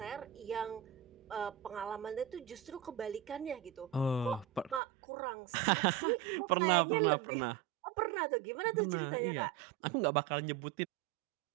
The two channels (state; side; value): drops out; left; at 4.8 s